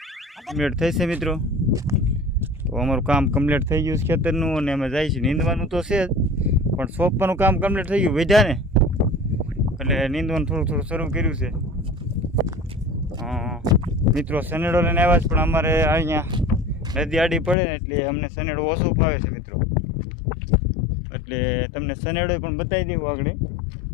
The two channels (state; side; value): drops out; right; at 17.6 s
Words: કમ્પ્લીટ થઈ છે મિત્રો. તો અમારું કામ કમ્પ્લીટ થઈ ગયું છે ખેતરનું, અને અમે જાય છે નીંદવાનું તો છે જ, પણ સોંપવાનું કામ કમ્પ્લીટ થઈ ગયું વધ્યા ને એટલે નીંદવાનું થોડું થોડું શરૂ કર્યું છે. મિત્રો સનેડો લઈને આવ્યા છે, પણ અમારે અહીંયા નદી આડી પડે ને એટલે અમને સનેડો ઓછો ફાવે છે મિત્રો, એટલે તમને સનેડો પણ બતાવી દેવું આગળ